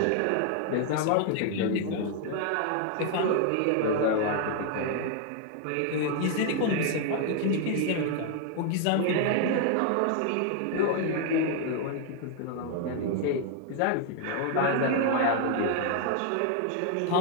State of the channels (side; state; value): both; different; correlation 0.00